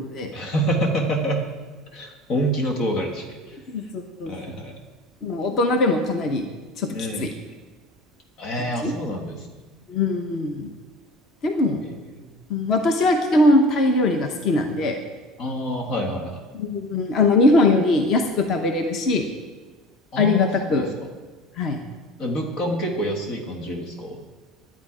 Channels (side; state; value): both; normal; correlation 0.38